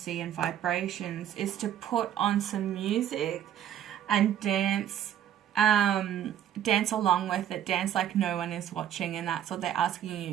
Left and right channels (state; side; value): quieter; left; 10.4 dB